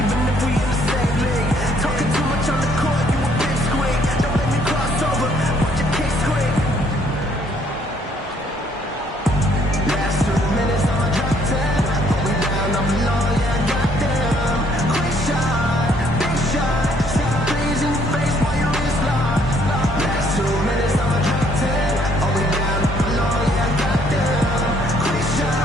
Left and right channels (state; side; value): normal; both; correlation 0.65